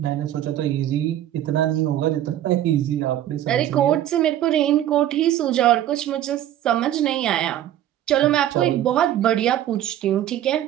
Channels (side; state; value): left; quieter; 12.1 dB